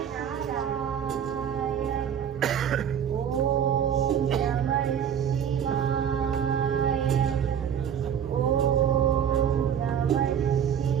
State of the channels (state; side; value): quieter; left; 8.6 dB